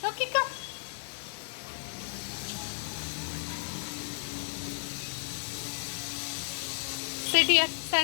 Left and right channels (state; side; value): silent; right; 56 dB below the other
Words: Rocky, come. Sit here.